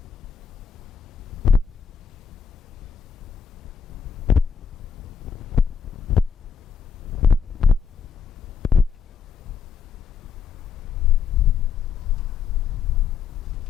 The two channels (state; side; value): quieter; right; 6.7 dB